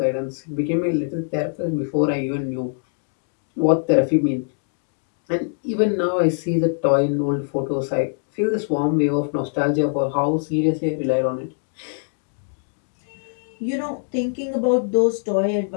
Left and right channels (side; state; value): right; silent; digital silence